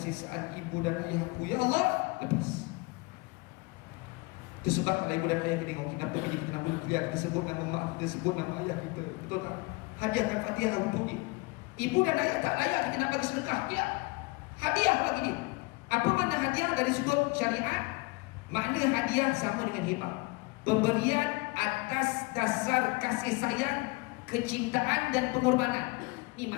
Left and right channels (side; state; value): right; quieter; 25.7 dB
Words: ibu dan ayahku, ya Allah, lepas. Itu sebab kalau ibu dan ayah kita tengok, kenapa kita nama dia, kita sebut nama mak, kita sebut nama ayah kita, betul tak? Hadiahkan Fatihah untuk dia. Ibu dan ayah tak layak kita nak bagi sedekah, tidak. Hadiah bagi dia. Apa makna hadiah dari sudut syariat? Makna hadiah sama dengan hibah, pemberian atas dasar kasih sayang, kecintaan dan pengorbanan. Ini